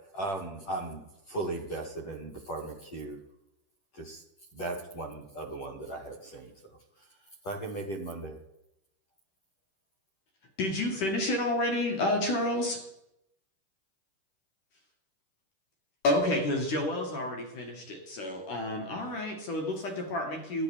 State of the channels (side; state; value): right; late; 10 ms